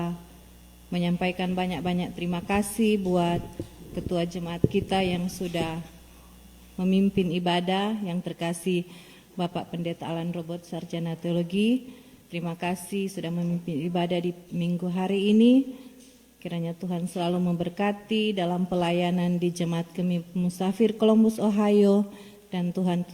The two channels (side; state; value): both; identical; correlation 1.00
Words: menyampaikan banyak-banyak terima kasih buat Ketua Jemaat kita yang sudah memimpin ibadah, yang terkasih Bapak Pendeta Alan Robert, Sarjana Teologi. Terima kasih sudah memimpin ibadah di minggu hari ini. Kiranya Tuhan selalu memberkati dalam pelayanan di Jemaat Kami Musafir Columbus, Ohio, dan Tuhan